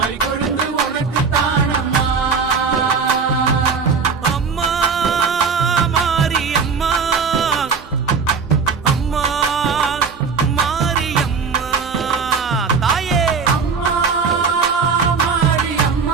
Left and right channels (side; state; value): left; quieter; 5.4 dB